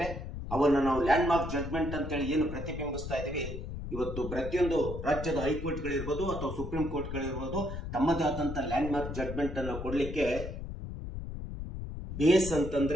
ಅವನ್ನ ನಾವು ಲ್ಯಾಂಡ್ ಮಾರ್ಕ್ ಜಡ್ಜ್ಮೆಂಟ್ ಅಂತೇಳಿ ಏನು ಪ್ರತಿಬಿಂಬಿಸ್ತಾ ಇದ್ದೀವಿ. ಇವತ್ತು ಪ್ರತಿಯೊಂದು ರಾಜ್ಯದ ಹೈಕೋರ್ಟ್ಗಳಿರ್ಬೋದು ಅಥವಾ ಸುಪ್ರೀಂ ಕೋರ್ಟ್ಗಳಿರ್ಬೋದು ತಮ್ಮದೇ ಆದಂತ ಲ್ಯಾಂಡ್ ಮಾರ್ಕ್ ಜಡ್ಜ್ಮೆಂಟ್ ಅನ್ನು ಕೊಡ್ಲಿಕ್ಕೆ ಬೇಸ್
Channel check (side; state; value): left; noise; rumble, 7 dB below the sound